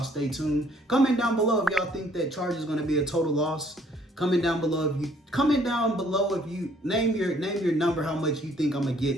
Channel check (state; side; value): normal; both; correlation 0.62